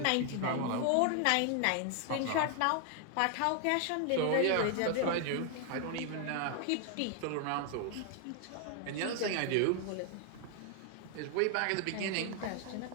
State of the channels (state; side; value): different; both; correlation 0.00